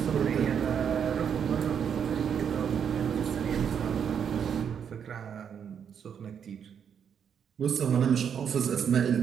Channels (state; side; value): quieter; left; 7.8 dB